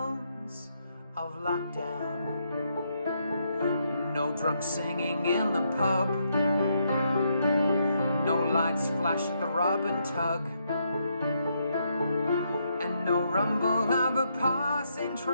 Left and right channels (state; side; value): inverted; both; correlation -0.77